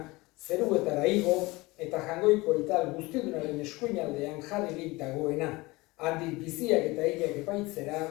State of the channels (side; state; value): right; quieter; 22.1 dB